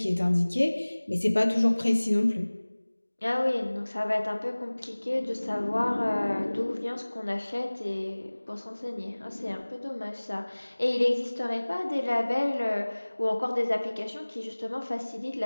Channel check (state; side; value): inverted; both; correlation -1.00